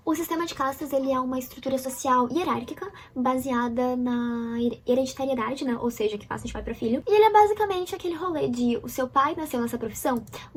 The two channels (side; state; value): both; identical; correlation 1.00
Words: O sistema de castas, ele é uma estrutura social hierárquica baseada na hereditariedade, né? Ou seja, que passa de pai para filho. E ele é basicamente aquele rolê de o seu pai nasceu nessa profissão,